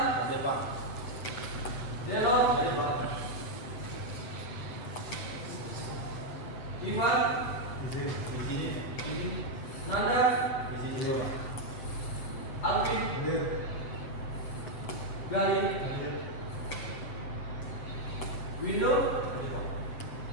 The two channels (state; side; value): late; right; 7.8 ms